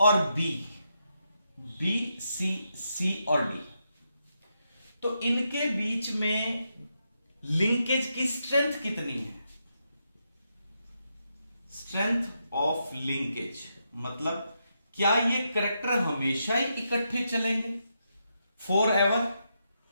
बी, सी और डी, तो इनके बीच में लिंकेज की स्ट्रेंथ कितनी है? स्ट्रेंथ ऑफ लिंकेज मतलब क्या ये कैरेक्टर हमेशा ही इकट्ठे चलेंगे फॉर एवर,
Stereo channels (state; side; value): inverted; both; correlation -0.83